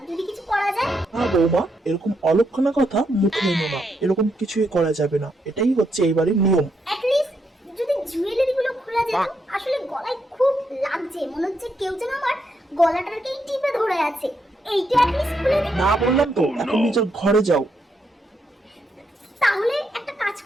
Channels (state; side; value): normal; both; correlation 0.79